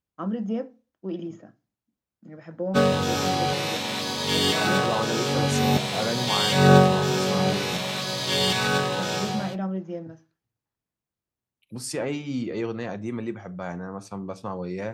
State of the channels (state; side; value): identical; both; correlation 1.00